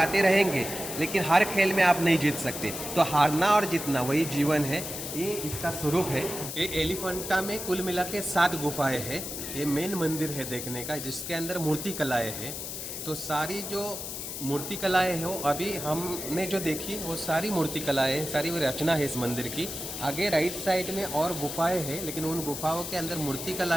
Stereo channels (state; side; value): noise; left; hiss, 7 dB below the sound